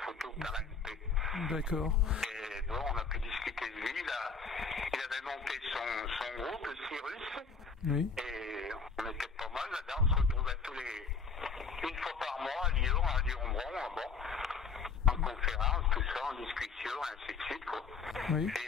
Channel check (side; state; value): right; quieter; 5.2 dB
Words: photo par la MP. D'accord. Et bon, on a pu discuter de lui, là. Il avait monté son groupe, le Cyrus. Oui. Et on était pas mal là-dedans, on se retrouvait une fois par mois à Lyon, à Lyon-Bron, en conférence, tout ça, en discussion, ainsi de suite, quoi. Oui.